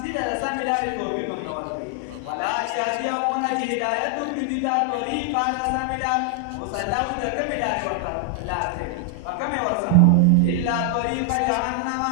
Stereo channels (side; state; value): both; different; correlation 0.00